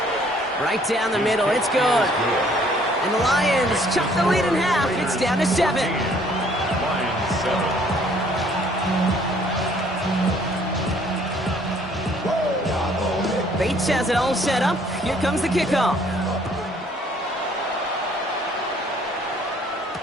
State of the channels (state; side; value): normal; both; correlation 0.60